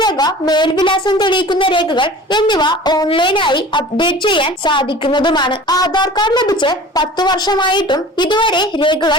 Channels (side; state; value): both; normal; correlation 0.42